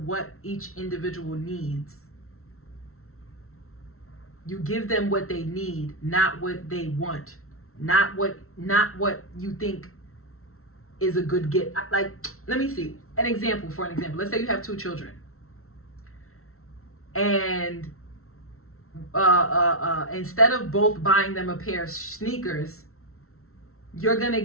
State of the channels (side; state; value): right; late; 0.63 ms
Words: what each individual needs. You give them what they need, not what they want, not what you think is a good gift. Like, let me see an example. For an example, let's say you have 2 children, and instead of both buying them a pair of sneakers, you're gonna